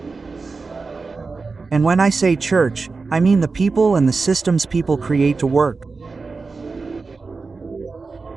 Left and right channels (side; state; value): left; quieter; 4.2 dB